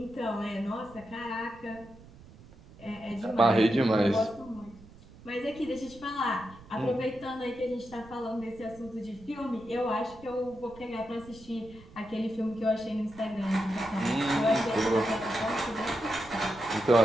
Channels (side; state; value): right; noise; rumble, 21 dB below the sound